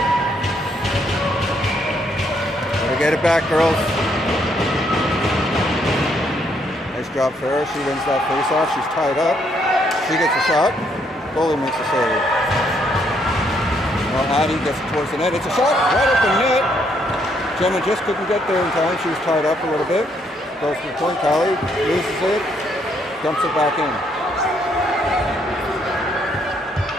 Get it back, girls. Nice job, Farah. She wins that face-off. She's tied up. She gets a shot. Goalie makes a save. Now Addie gets it towards the net. It's a shot right at the net. Gemma just couldn't get there in time. She was tied up a little bit. Goes to the point. Callie loses it. Dumps it back in.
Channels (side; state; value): both; normal; correlation 0.72